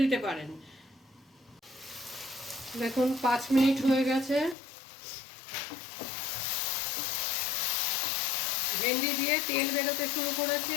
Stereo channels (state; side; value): drops out; right; at 4.5 s